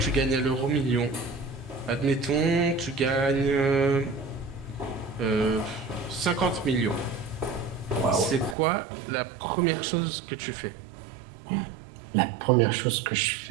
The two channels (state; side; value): drops out; left; at 8.6 s